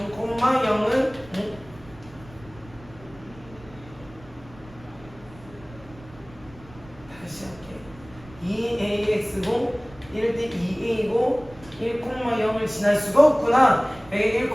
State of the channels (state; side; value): noise; right; rumble, 21 dB below the sound